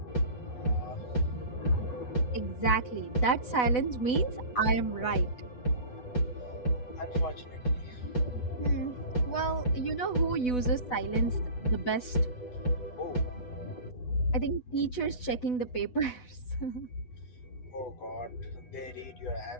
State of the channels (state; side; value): late; right; 8.1 ms